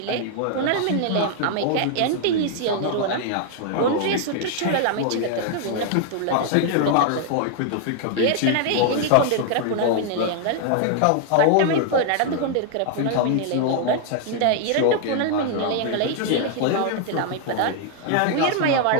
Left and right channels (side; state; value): both; different; correlation 0.00